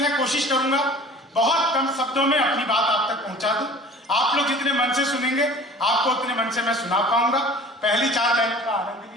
है, कोशिश करूंगा बहुत कम शब्दों में अपनी बात आप तक पहुंचा दूं। आप लोग जितने मन से सुनेंगे आपको उतने मन से मैं सुना पाऊंगा। पहली 4 लाइनों का आनंद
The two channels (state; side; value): normal; both; correlation 0.45